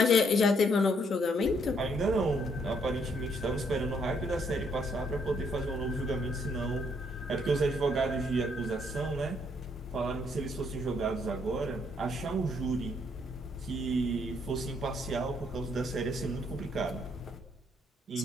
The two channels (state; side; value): normal; both; correlation 0.70